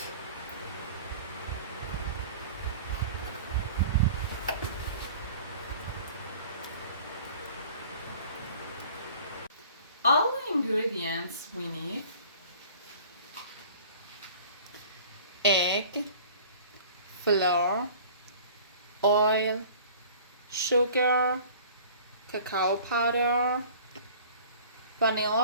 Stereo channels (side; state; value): both; inverted; correlation -0.46